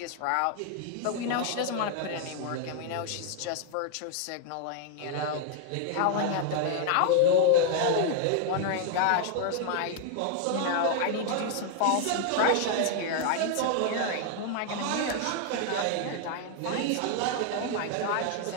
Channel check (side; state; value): both; different; correlation 0.00